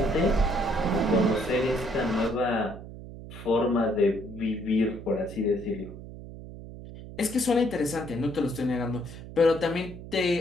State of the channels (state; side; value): noise; right; hum, 13 dB below the sound